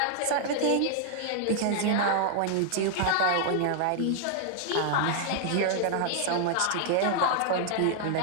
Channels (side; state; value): both; different; correlation 0.00